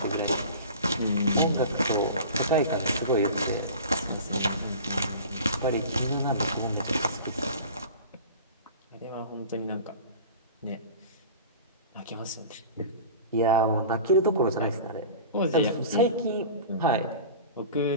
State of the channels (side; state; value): both; inverted; correlation -0.38